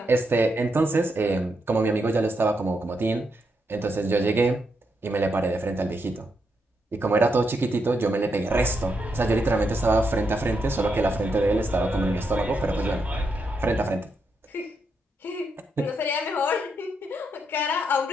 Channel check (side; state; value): both; normal; correlation 0.81